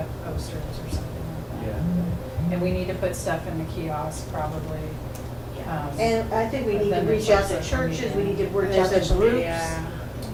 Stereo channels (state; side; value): identical; both; correlation 1.00